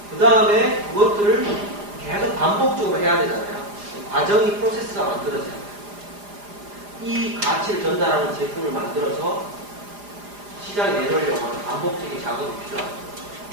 그 다음에 그것들을 계속 반복적으로 해야 되잖아요. 과정이 프로세스가 만들어져요. 이 가치를 전달하는 제품을 만들어서 시장에 내놓으려고 하는 반복적인 작업이 필요합니다.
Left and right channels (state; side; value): late; left; 4.9 ms